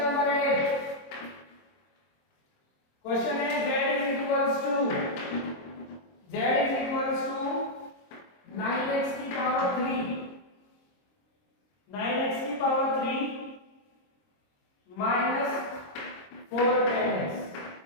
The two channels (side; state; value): right; late; 24 ms